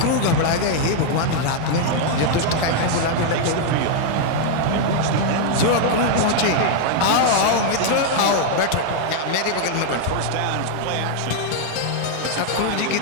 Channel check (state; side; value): different; both; correlation 0.00